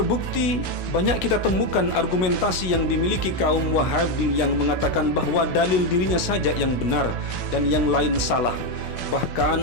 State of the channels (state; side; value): late; right; 16 ms